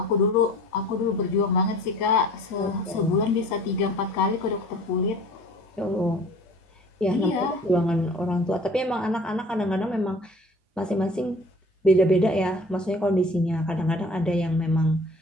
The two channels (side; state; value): both; normal; correlation 0.47